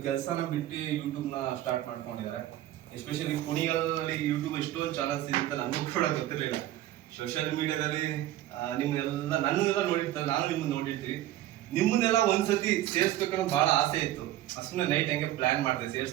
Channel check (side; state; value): left; quieter; 14.0 dB